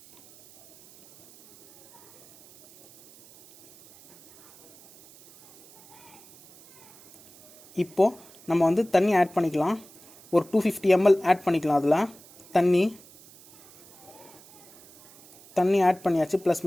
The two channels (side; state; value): right; noise; hiss, 24 dB below the sound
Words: இப்போது நம்ம வந்து தண்ணி ஆட் பண்ணிக்கலாம். ஒரு 250 ml ஆட் பண்ணிக்கலாம். அதில் தண்ணி ஆட் பண்ணியாச்சு. ப்ளஸ்